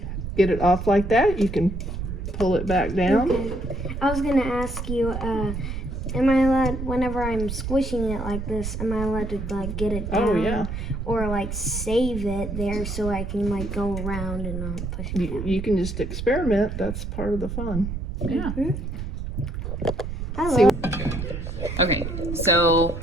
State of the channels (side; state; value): right; noise; rumble, 5 dB below the sound